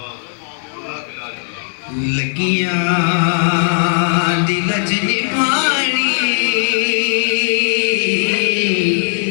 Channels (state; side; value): silent; right; 68 dB below the other